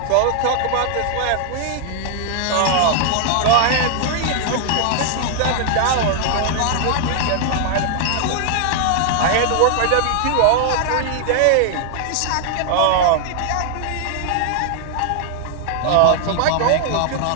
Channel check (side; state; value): both; different; correlation 0.00